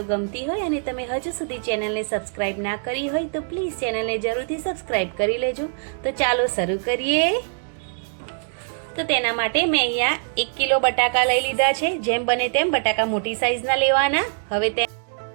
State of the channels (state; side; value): silent; left; digital silence